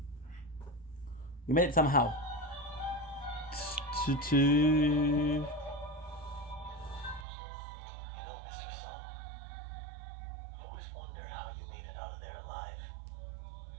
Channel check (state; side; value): drops out; left; at 7.2 s